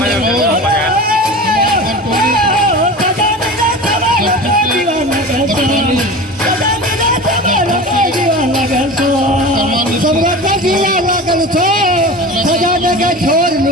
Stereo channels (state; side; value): normal; both; correlation 0.32